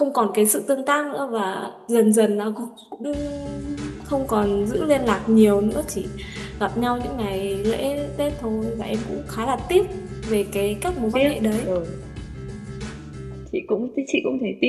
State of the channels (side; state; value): both; identical; correlation 1.00